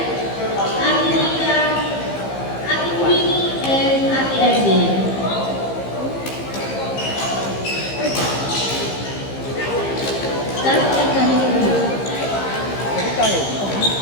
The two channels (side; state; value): right; late; 15 ms